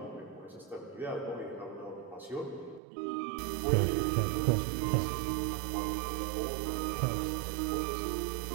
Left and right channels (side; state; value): left; drops out; at 2.8 s